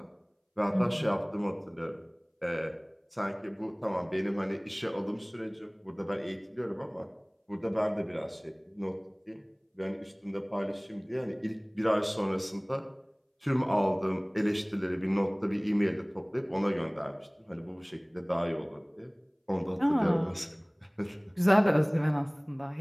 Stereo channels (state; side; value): identical; both; correlation 1.00